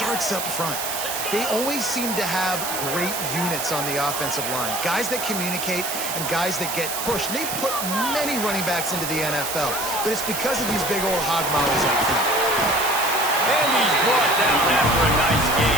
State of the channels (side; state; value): right; noise; hiss, 4 dB below the sound